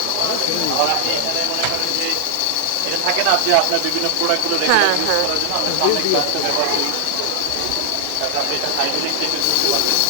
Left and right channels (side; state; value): both; different; correlation 0.00